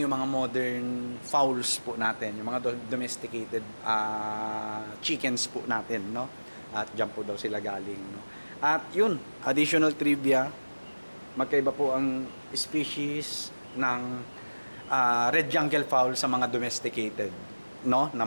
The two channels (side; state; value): both; inverted; correlation -1.00